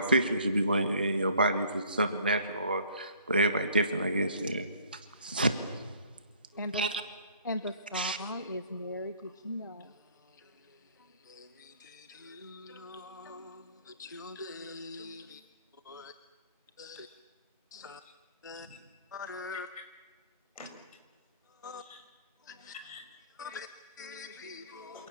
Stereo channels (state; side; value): inverted; both; correlation -0.56